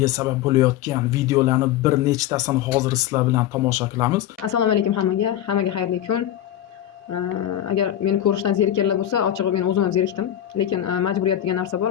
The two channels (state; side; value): quieter; right; 11.7 dB